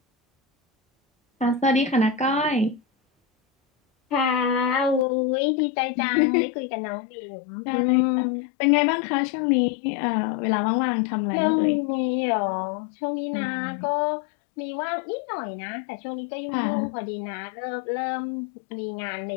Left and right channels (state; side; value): drops out; right; at 5.1 s